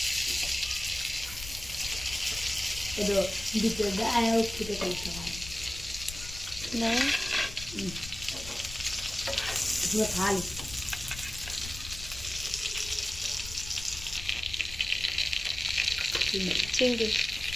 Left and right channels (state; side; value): noise; left; rumble, 12 dB below the sound